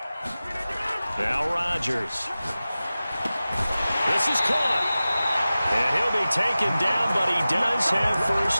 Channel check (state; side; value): inverted; both; correlation -0.96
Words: Now Rodgers. This is caught. And he'll be taken down, but he does have